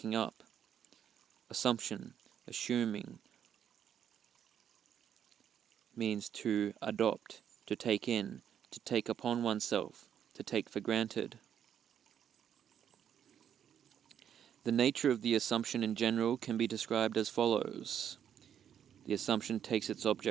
up, assumption, assuming, means to adopt, to take in, to take upon oneself, to take for granted. The nature of the assumption in general can be described as follows. The assumption takes its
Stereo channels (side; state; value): left; quieter; 9.1 dB